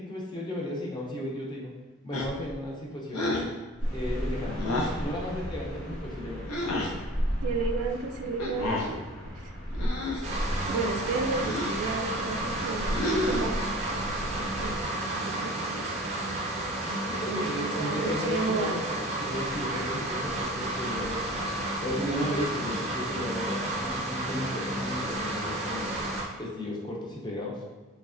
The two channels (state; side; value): normal; both; correlation 0.40